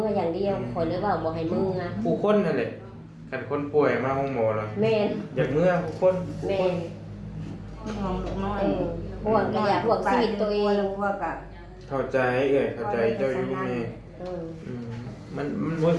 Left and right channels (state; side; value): identical; both; correlation 1.00